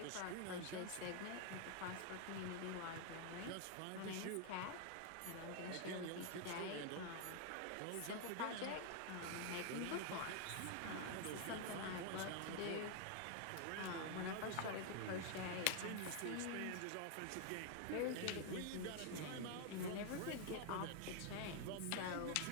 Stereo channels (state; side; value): different; both; correlation 0.00